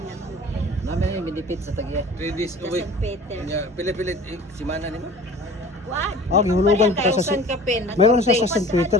na ko. Namin yung benefit sa tagya. 3 days a Sa week. San Peter. Pilit-pilit si mana nimo. What? Ah, gihulugan pa sa Thousand ka pin. mayroon siya sa St. Peter,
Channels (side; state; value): both; normal; correlation 0.43